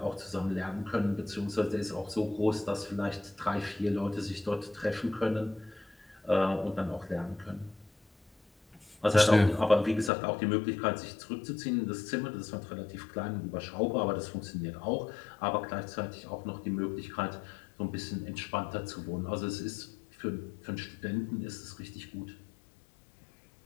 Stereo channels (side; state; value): right; drops out; at 10.1 s